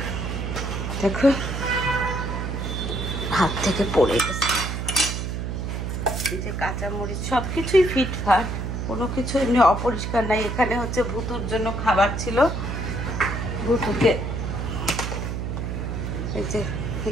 দেখো হাত থেকে পড়ে গেছে। এই যে কাঁচামরিচ সবকিছুই ফিটফাট, কোনো কিছু এমনি অপরিষ্কার নাই। এখানে হচ্ছে ভুতুর জন্য খাবার ছিল, ভুতুকে এই যে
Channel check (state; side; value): noise; right; hum, 3 dB below the sound